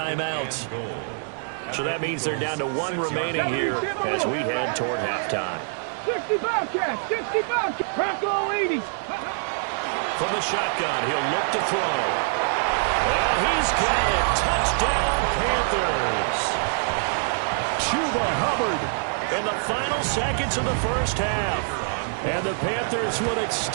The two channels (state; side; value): silent; left; digital silence